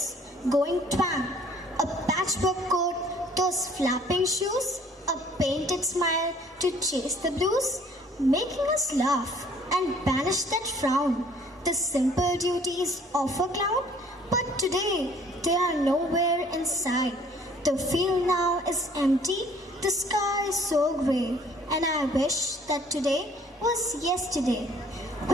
going twang, a patchwork coat, those flapping shoes, a painted smile to chase the blues, making us laugh and banish that frown, the simple duties of a clown. But today they are nowhere in sight. The field now is empty, the sky is so grey, and I wish that today was yesterday.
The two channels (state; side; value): normal; both; correlation 0.56